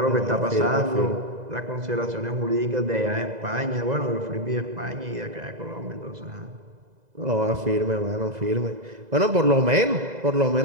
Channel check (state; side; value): late; left; 2.0 ms